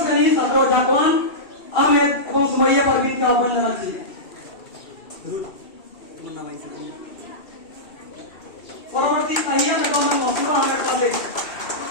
শ্রেণীর ছাত্র জাকওয়ান আহমেদ এবং সুমাইয়া পারভিনকে আহ্বান জানাচ্ছি। পরবর্তী তাহিয়া বেগম এবং মসুবা আহমেদ, ক্লাস 8।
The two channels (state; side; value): late; right; 2.7 ms